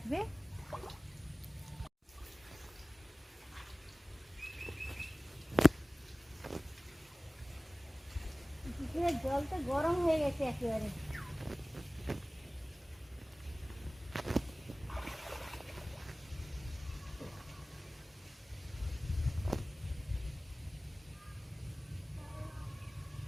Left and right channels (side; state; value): both; normal; correlation 0.97